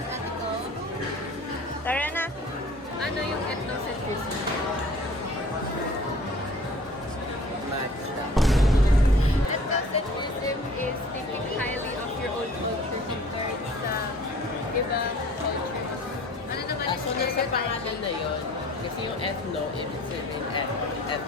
ethical. Tara na. Ano yung ethnocentrism? Matcha. Ethnocentrism is thinking highly of your own culture compared sa ibang cultures. Ano naman yung So, nasa pangalan na yun, kasi yung ethno, ibig sabihin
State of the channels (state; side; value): normal; both; correlation 0.48